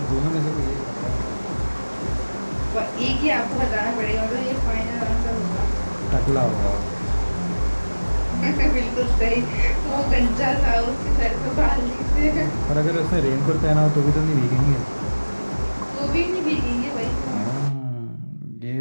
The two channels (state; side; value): inverted; both; correlation -1.00